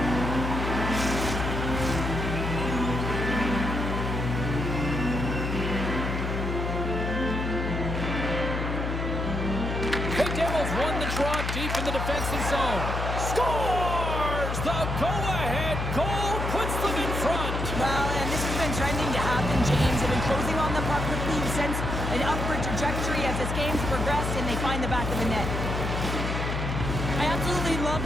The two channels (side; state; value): left; noise; hum, 2 dB below the sound